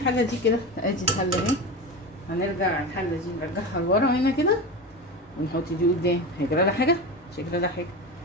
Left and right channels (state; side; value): normal; both; correlation 0.25